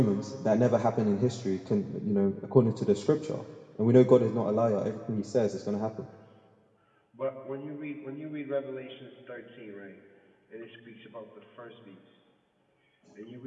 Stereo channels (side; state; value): both; identical; correlation 1.00